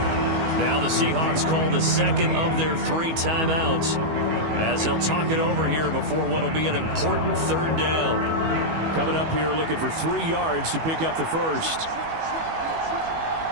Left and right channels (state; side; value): late; left; 19 ms